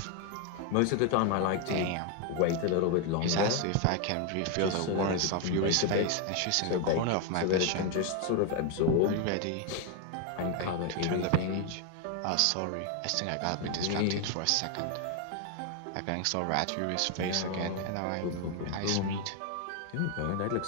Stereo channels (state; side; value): different; both; correlation 0.01